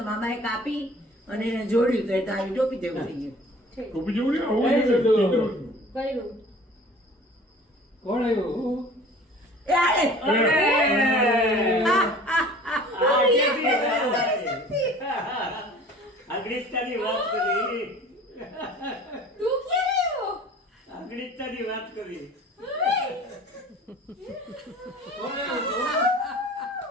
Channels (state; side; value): normal; both; correlation 0.46